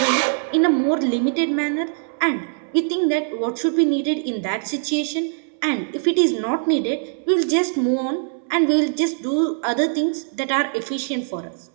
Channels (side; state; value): left; silent; 64 dB below the other